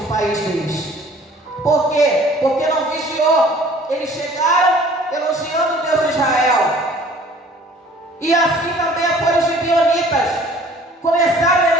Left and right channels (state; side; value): normal; both; correlation 0.52